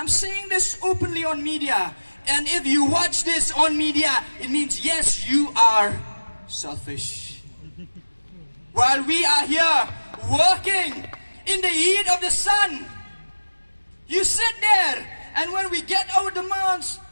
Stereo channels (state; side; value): inverted; both; correlation -1.00